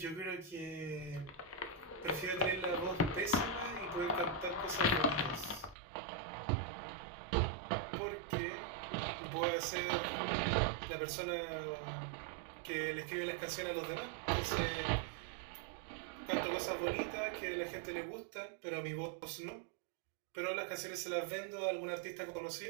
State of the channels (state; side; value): drops out; left; at 5.8 s